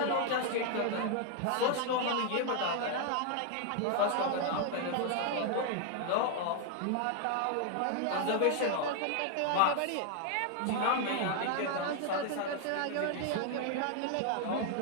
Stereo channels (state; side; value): different; both; correlation 0.00